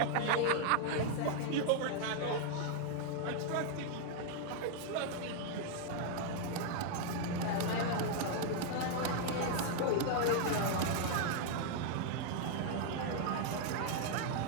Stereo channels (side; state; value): both; different; correlation 0.00